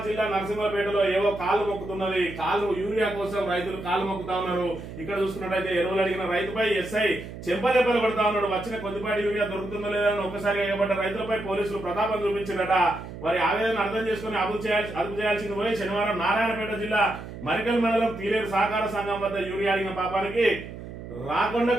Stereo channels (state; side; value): noise; right; hum, 11 dB below the sound